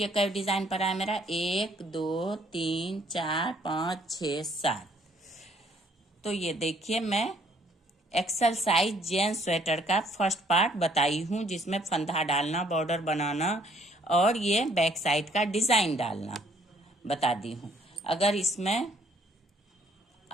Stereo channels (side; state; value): both; normal; correlation 0.63